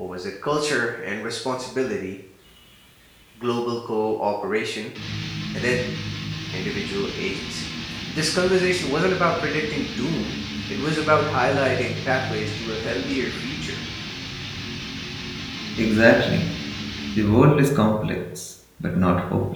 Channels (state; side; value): identical; both; correlation 1.00